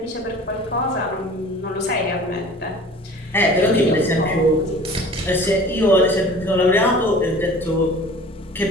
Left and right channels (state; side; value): normal; both; correlation 0.44